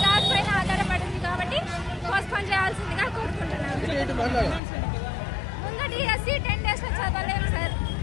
జాబ్ పైన ఆధారపడింది కాబట్టి పోస్ట్పోన్ చేయాల్సిందిగా కోరుకుంటున్నాను. ముందు డిఎస్సి 10 days లో చదవలేము సార్.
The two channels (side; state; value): right; drops out; at 4.6 s